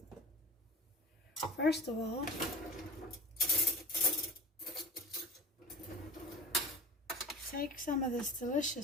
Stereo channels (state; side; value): normal; both; correlation 0.35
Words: first of all take some of this